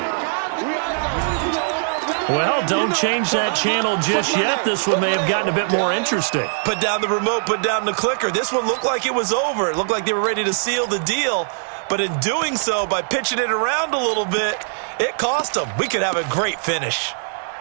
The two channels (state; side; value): silent; left; digital silence